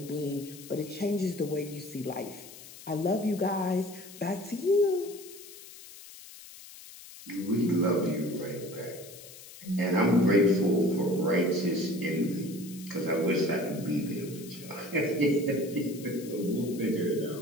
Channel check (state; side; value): noise; left; hiss, 17 dB below the sound